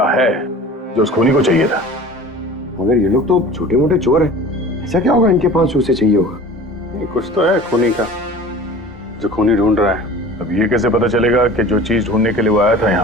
है जो उस खूनी को चाहिए था। मगर ये लोग तो छोटे मोटे चोर हैं, ऐसा क्या होगा इनके पास जो उसे चाहिए होगा? कुछ तो है खूनी का जो खूनी ढूंढ रहा है। अब ये कैसे पता चलेगा कि जो चीज ढूंढने के लिए वो आया था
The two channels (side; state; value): both; normal; correlation 0.41